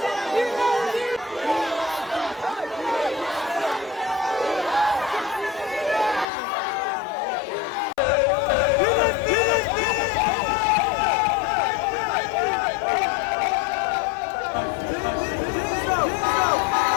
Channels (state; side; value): drops out; right; at 6.2 s